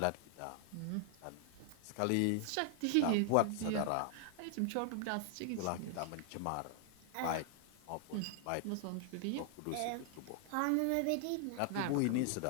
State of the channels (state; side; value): different; both; correlation 0.00